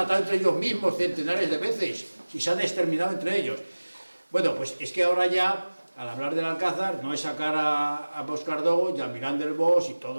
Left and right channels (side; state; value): both; inverted; correlation -1.00